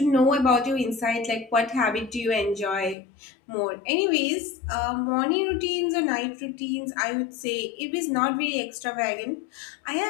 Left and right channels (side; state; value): right; drops out; at 3.0 s